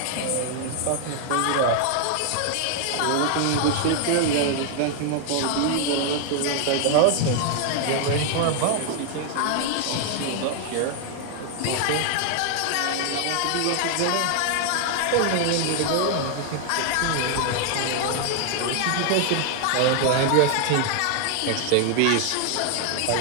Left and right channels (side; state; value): both; different; correlation 0.00